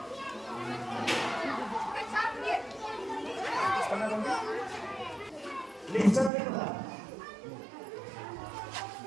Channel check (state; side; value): drops out; left; at 6.3 s